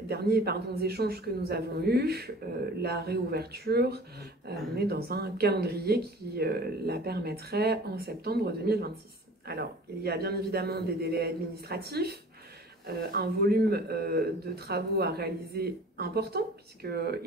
échanges que nous avons eus, la réouverture, on est dans un calendrier qui la permettrait en septembre 2026. Alors, il y a bien évidemment des délais administratifs un volume de travaux à réaliser important,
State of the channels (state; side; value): normal; both; correlation 0.44